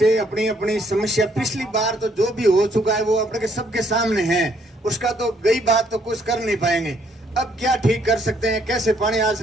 अपनी अपनी समस्या, पिछली बार तो जो भी हो चुका है वो अपने सबके सामने है, उसका तो गई बात तो कुछ कर नहीं पाएंगे। अब क्या ठीक कर सकते हैं, कैसे पानी आ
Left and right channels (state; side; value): normal; both; correlation 0.68